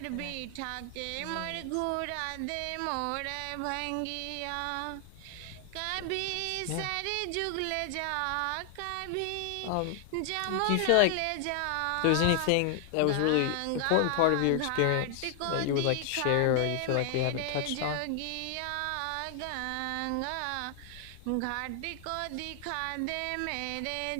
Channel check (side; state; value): both; different; correlation 0.00